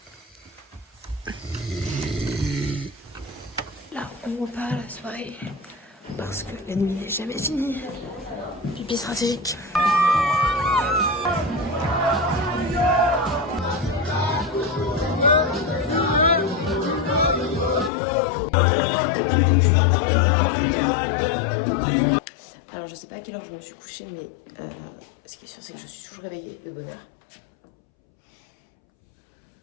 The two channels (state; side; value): drops out; right; at 17.9 s